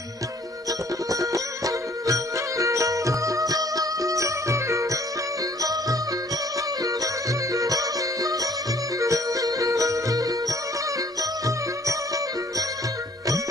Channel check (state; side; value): normal; both; correlation 0.58